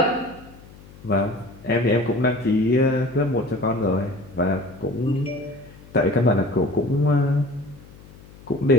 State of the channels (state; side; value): noise; left; hum, 21 dB below the sound